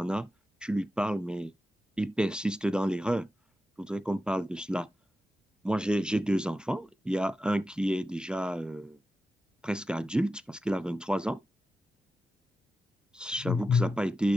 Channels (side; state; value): both; normal; correlation 0.91